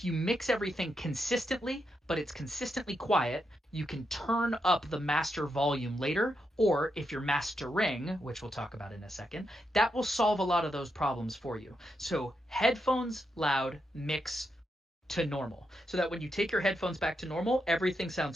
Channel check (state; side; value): normal; both; correlation 0.83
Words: you mix everything consistently, but it's consistently quiet, you can turn up the master volume later, or if you're mastering, which we'll talk about in a second, that will solve a lot of those problems for you. So headphones loud, mix to normal, so that when you take your headphones back to normal, everything